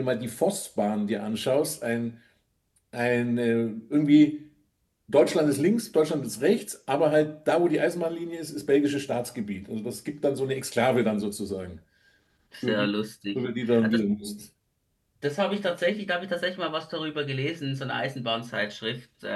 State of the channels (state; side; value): identical; both; correlation 1.00